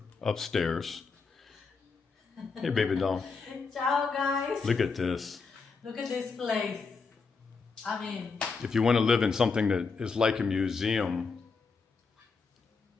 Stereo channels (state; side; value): quieter; right; 4.8 dB